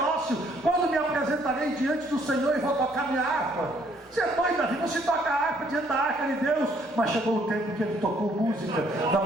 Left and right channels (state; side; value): normal; both; correlation 0.65